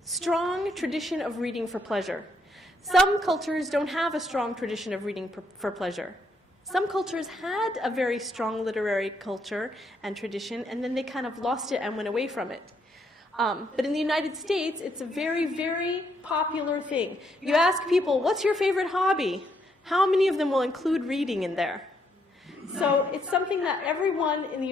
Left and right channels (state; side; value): normal; both; correlation 0.74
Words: tradition of reading for pleasure. Some cultures don't have a strong tradition of reading for pleasure. Some cultures had a very strong literary culture and tradition, and then they kind of lost it and went away from it. But in the United States, it's a very, very popular thing. You ask people, what's your favorite hobby? How many of them will include reading in there? So it's something that everyone